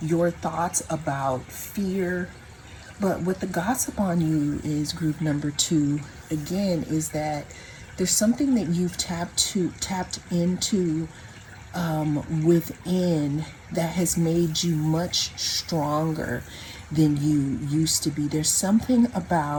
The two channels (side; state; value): both; identical; correlation 1.00